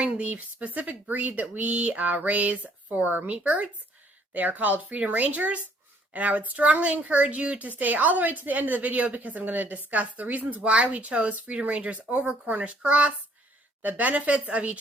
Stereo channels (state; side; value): normal; both; correlation 0.62